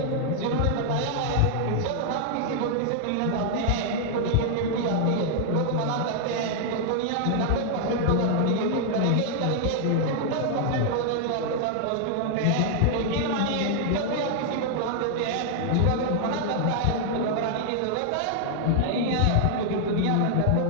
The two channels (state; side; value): different; both; correlation 0.00